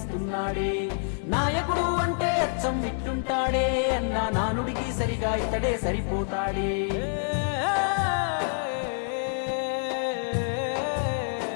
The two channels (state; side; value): silent; right; digital silence